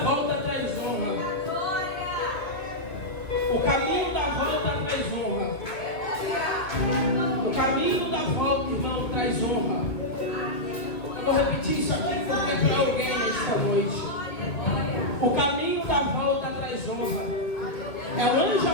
volta traz honra. O caminho da volta traz honra. O caminho da volta, irmão, traz honra. Eu vou repetir isso aqui porque é para alguém esta noite. O caminho da volta traz honra. É o anjo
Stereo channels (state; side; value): late; right; 2.3 ms